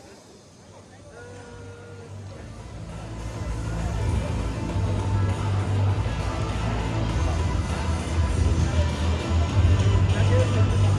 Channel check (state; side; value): identical; both; correlation 1.00